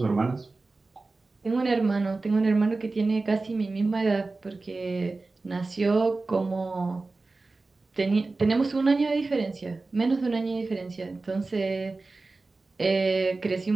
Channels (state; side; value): quieter; left; 3.5 dB